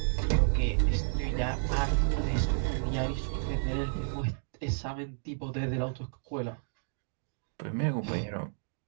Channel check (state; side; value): silent; left; digital silence